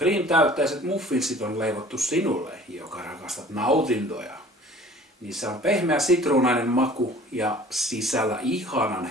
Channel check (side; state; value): both; normal; correlation 0.48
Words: muffinsit on leivottu sinulle, joka rakastat nautintoja. Niissä on pehmeä sitruunainen maku ja sisällä ihanan